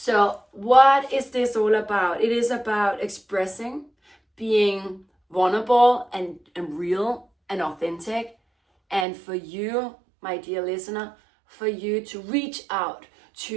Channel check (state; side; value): drops out; left; at 9.1 s